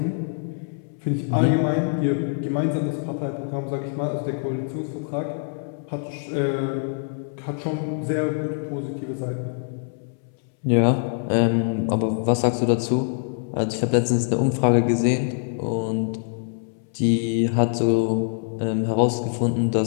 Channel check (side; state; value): right; silent; 62 dB below the other